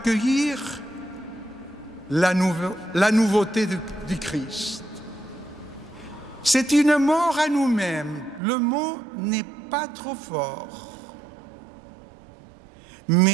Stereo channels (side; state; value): left; drops out; at 8.4 s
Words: la nouveauté du Christ. C'est une mort à nous-mêmes. Le mot n'est pas trop fort.